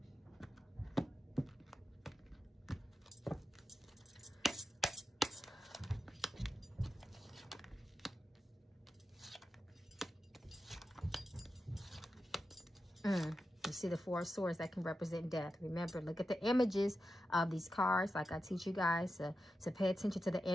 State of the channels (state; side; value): normal; both; correlation 0.90